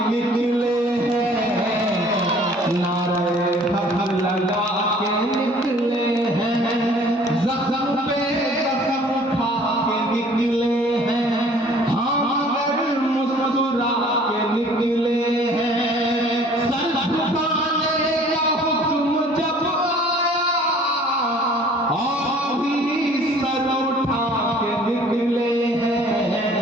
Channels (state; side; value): normal; both; correlation 0.53